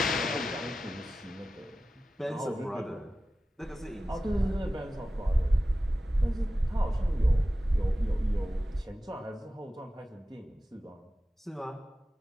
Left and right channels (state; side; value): normal; both; correlation 0.95